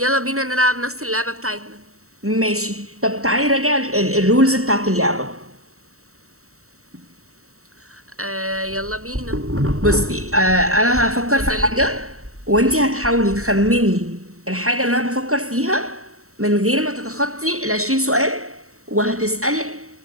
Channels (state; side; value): late; left; 0.64 ms